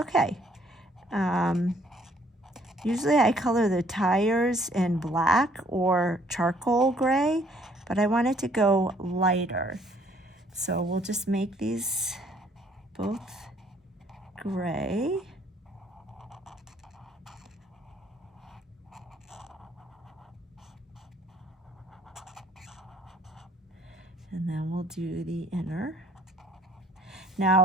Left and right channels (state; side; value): normal; both; correlation 0.62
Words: Usually I color the tires in black or charcoal gray, but I want it to go lighter. So we'll just make these both gray. And then we'll do the inner. Now